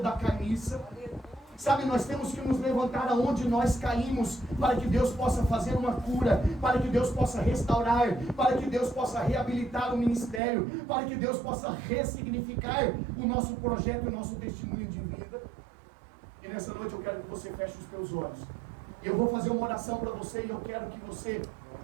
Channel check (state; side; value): drops out; left; at 10.4 s